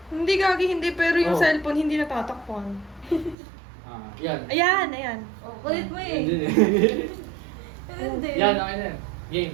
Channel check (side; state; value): left; drops out; at 3.4 s